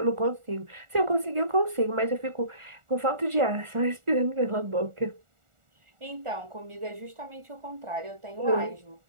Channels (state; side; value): late; left; 1.4 ms